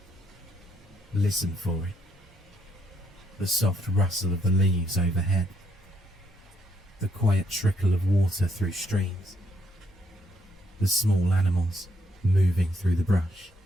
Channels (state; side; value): normal; both; correlation 0.73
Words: Listen for it. The soft rustle of the leaves overhead. The quiet trickle of water through streams. The small animals moving through the brush.